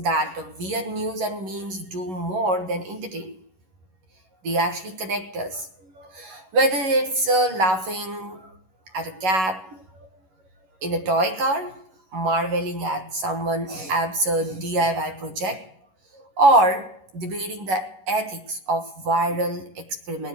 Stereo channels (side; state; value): left; late; 11 ms